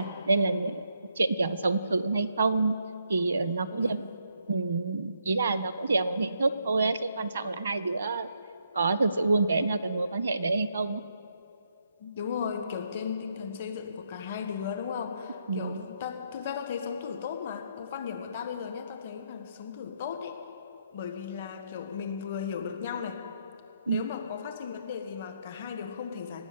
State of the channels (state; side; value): inverted; both; correlation -0.77